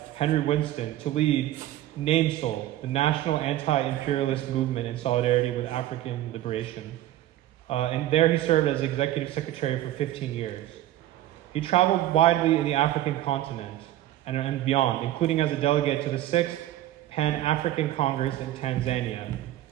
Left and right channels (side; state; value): left; quieter; 13.9 dB